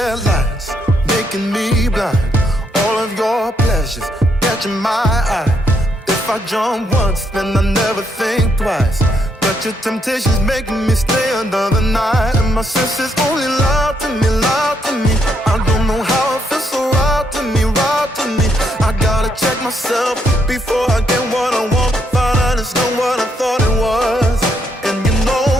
making me blind. All of your pleasures catching my eye. If I jump once, then I never think twice. But your temptation's making me stay another night, and my senses only lie to me, lie to me. I don't know how it feels so right to me, right to me. I gotta check myself before I get what I want. Find out it's not what I thought it was. And you know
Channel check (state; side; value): normal; both; correlation 0.75